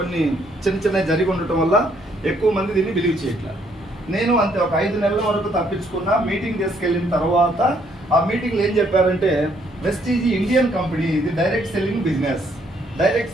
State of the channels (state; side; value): noise; left; hum, 25 dB below the sound